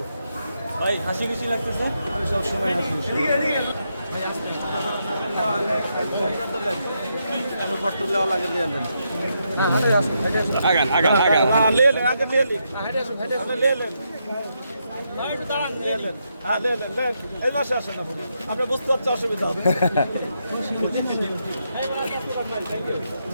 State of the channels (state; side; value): inverted; both; correlation -0.81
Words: ভাই হাসি খুশি লাগতেছে। আমি সব সময় হাসি খুশি। কষ্ট দেওয়া লাগে দিয়ে দেন। আগান আগান আগান লে লে আগে লে লে লে লে এই মাসে আসেন না আপনি বুঝতে পারছেন অসুবিধা হবে।